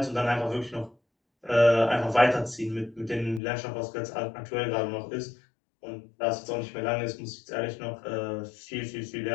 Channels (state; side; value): drops out; right; at 3.4 s